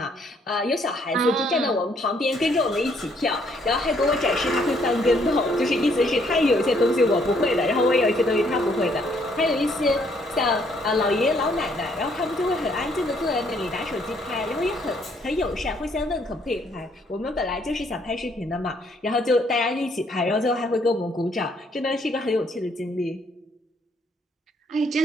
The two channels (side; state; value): both; normal; correlation 0.68